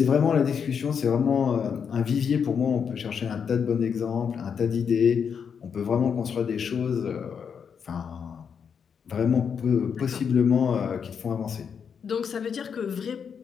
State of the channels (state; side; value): quieter; right; 6.9 dB